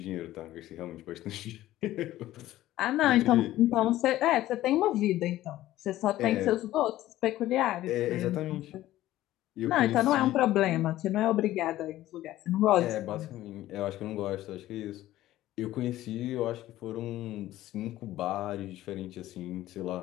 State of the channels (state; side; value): quieter; right; 14.8 dB